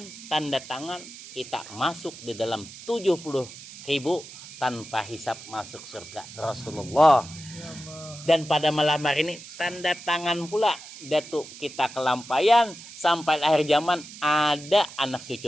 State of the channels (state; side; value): noise; right; hiss, 15 dB below the sound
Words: tanda tangan kita masuk di dalam 70.000 tanpa hisap masuk surga Rasulullah. Dan pada malam hari ini tanda tangan pula Datuk kita Kelampayan sampai akhir zaman ada anak